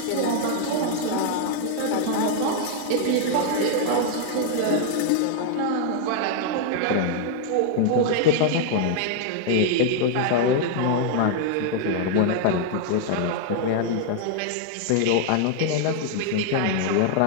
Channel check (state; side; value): different; both; correlation 0.00